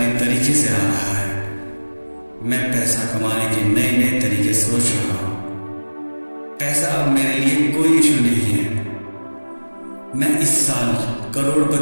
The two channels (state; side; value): inverted; both; correlation -1.00